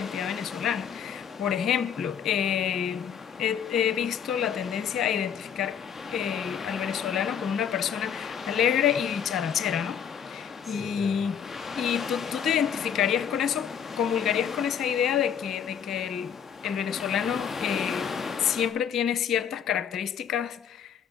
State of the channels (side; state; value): right; quieter; 8.2 dB